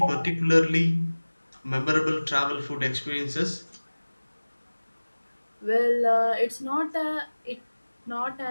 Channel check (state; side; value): inverted; both; correlation -1.00